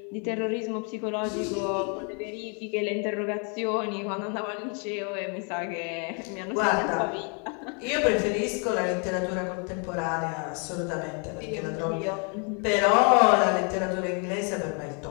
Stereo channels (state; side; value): quieter; right; 37.8 dB